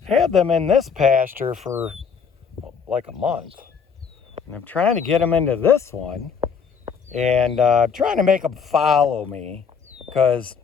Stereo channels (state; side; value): quieter; right; 6.3 dB